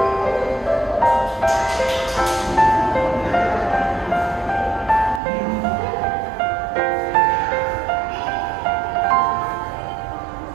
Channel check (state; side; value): drops out; left; at 5.2 s